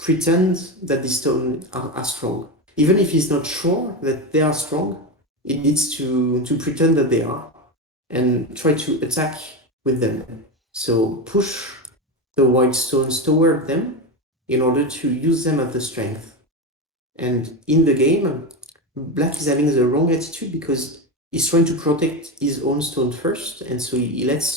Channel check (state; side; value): normal; both; correlation 0.17